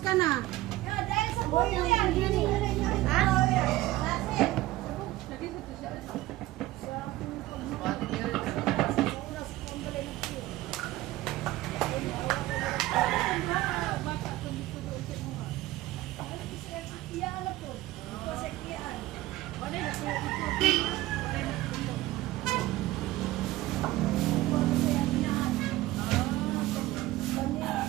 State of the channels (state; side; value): quieter; left; 16.9 dB